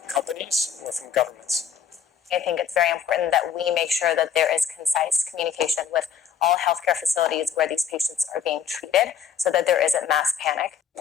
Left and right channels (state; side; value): quieter; right; 7.5 dB